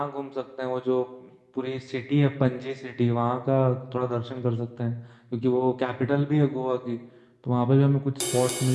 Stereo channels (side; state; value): both; identical; correlation 1.00